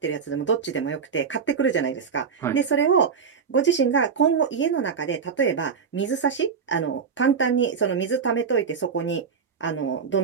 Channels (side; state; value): left; quieter; 6.2 dB